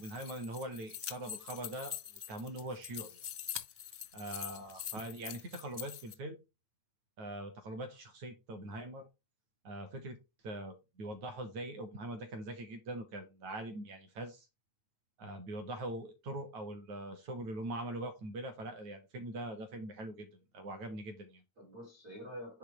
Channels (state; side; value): late; left; 9.2 ms